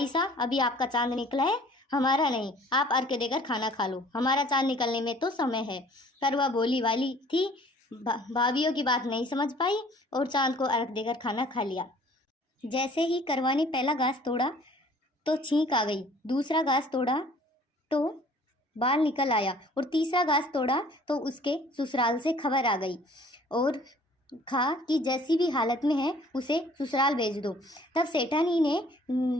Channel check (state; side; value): normal; both; correlation 0.53